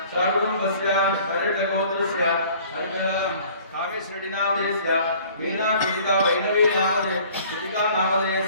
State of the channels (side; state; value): both; inverted; correlation -0.52